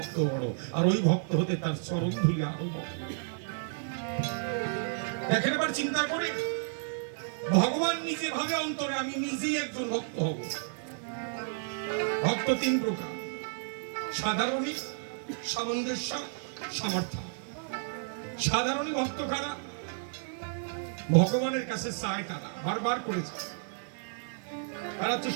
বড়, আর ওই ভক্ত হতে তার চরণ ধুলি আরো বড়। দেখেন এবার চিন্তা করে, ভগবান নিজে ভাবে অন্তরে আমি নিজেই একজন ভক্ত হব। ভক্ত 3 প্রকার, সাধারণী, সামঞ্জস্য, সমর্থন। সাধারণী ভক্ত কারা? ভগবানের কাছে চায় তারা, বারবার করেছে, তারা হচ্ছে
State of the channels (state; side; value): silent; left; 56 dB below the other